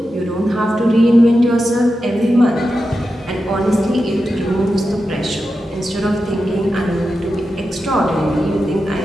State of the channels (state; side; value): normal; both; correlation 0.90